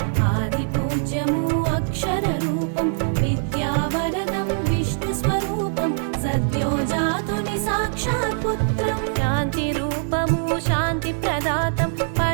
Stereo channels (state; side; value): silent; left; 64 dB below the other